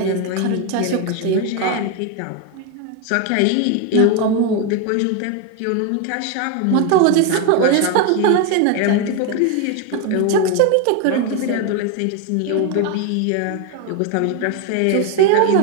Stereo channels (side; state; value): both; different; correlation 0.02